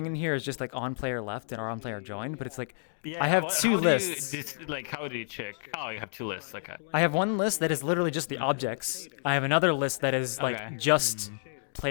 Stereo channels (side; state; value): right; silent; digital silence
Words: in here is just like on player left and on player joined, but it's like I have two lists. How do you check? Oh, you have two lists. Okay. I have one list that is literally just the objects. I have another list that is like Okay. just